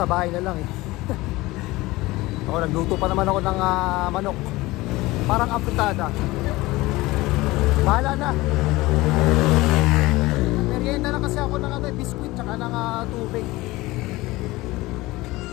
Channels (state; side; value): quieter; right; 19.9 dB